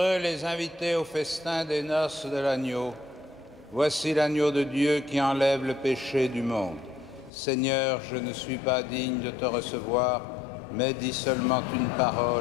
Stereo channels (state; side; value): drops out; right; at 7.3 s